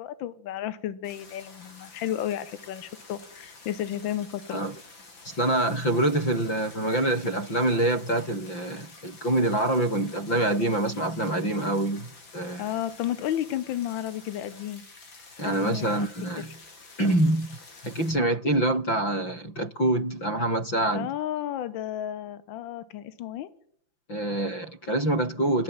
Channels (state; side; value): late; right; 5.9 ms